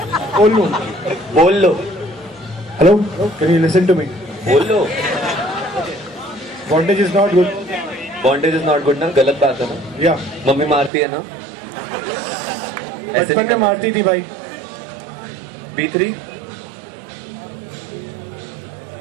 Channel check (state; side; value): drops out; left; at 10.9 s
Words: लो. Hello, can you listen to me? बोल लो. Bondage is not good. Bondage is not good ना? गलत बात है ना? Yeah. मम्मी मारती है ना? ऐसे बचपन में मारती थी भाई. B3